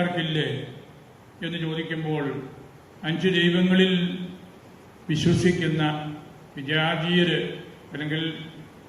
എന്ന് ചോദിക്കുമ്പോൾ 5 ദൈവങ്ങളിൽ വിശ്വസിക്കുന്ന വിജാതീയര് അല്ലെങ്കിൽ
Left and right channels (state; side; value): identical; both; correlation 1.00